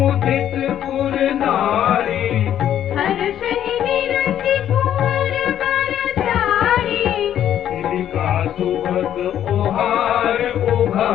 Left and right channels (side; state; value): right; quieter; 10.6 dB